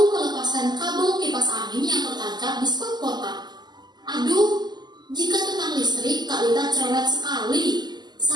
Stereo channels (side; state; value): left; late; 0.21 ms